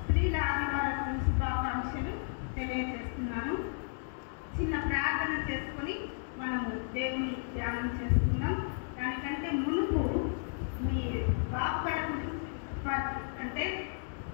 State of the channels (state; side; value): silent; right; digital silence